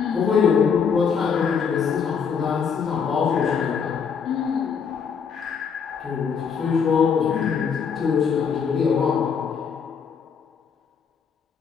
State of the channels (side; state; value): right; quieter; 6.5 dB